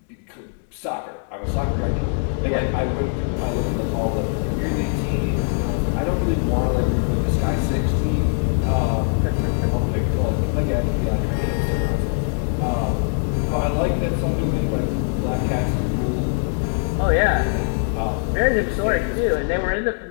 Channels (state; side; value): silent; right; 60 dB below the other